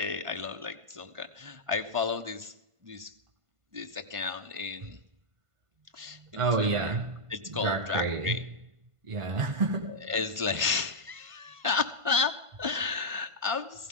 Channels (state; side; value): late; left; 1.5 ms